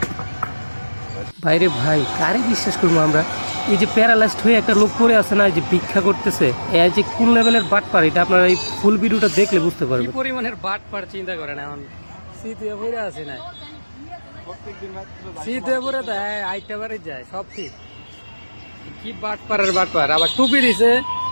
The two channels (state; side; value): inverted; both; correlation -1.00